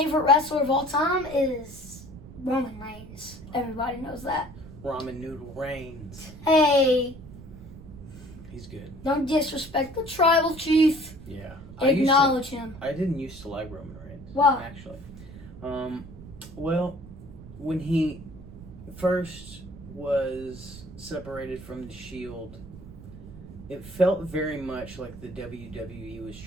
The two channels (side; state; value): right; noise; rumble, 16 dB below the sound